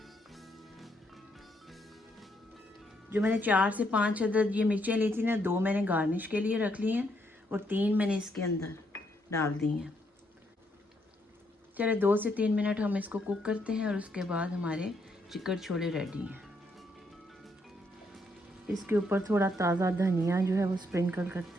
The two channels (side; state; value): both; normal; correlation 0.75